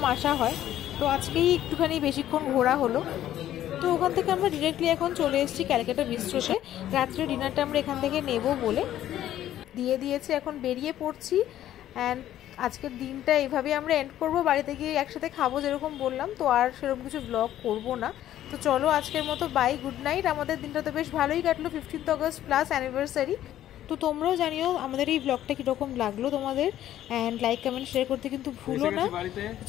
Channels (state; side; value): quieter; right; 12.4 dB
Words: আসা হয়। তো আজকেই একটুখানি বেশিক্ষণ ঘোরা হলো। তো ওখান থেকে আমরা ডিরেক্টলি এখন চলে এসেছি ক্যালকাটা বিস্ট্রোতে। রাত্রে ডিনারটা আমরা এখান থেকে নেব বলে দিয়ে দিয়েছি, এখন বেরিয়ে পড়ছি। অ্যান্ড আজকের দিনটা এইভাবেই আমরা এন্ড করবো, বাড়িতে গিয়ে একসাথে খাবো যেরকম বললাম, তো আর সেরকম কিছু ব্লগ করবো না। তো চলো আজকের মতো বাই, গুড নাইট। আমাদের দিনটা তো বেশ ভালোই কাটলো, 15th অগস্ট প্লাস অ্যানিভার্সারি। তো তোমরাও জানিও আমাদের এই ব্লগটা কীরকম লাগলো তোমাদের, অ্যান্ড লাইক কমেন্ট শেয়ার করতে কিন্তু ভুলো না।